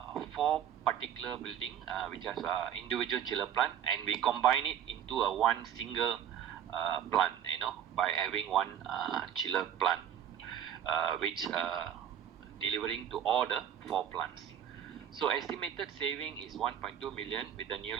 4 particular building which has individual chiller plant, and we combine it into a one single plant, by having one chiller plant, which delivering to all the 4 plants. So estimated saving is 1.2 million with the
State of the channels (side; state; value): left; quieter; 9.6 dB